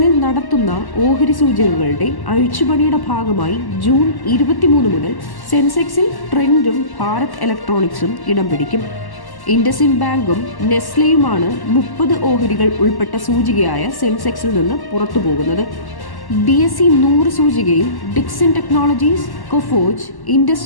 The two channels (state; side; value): late; right; 1.1 ms